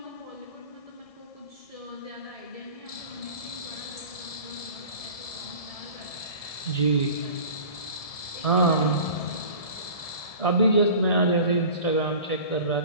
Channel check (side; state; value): right; late; 1.7 ms